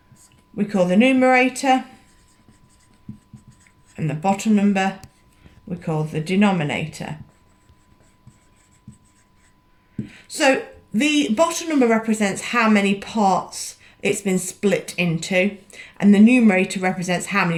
we call the numerator, and the bottom number we call the denominator. So the bottom number represents how many parts it's been split into, and the numerator represents how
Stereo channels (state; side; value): identical; both; correlation 1.00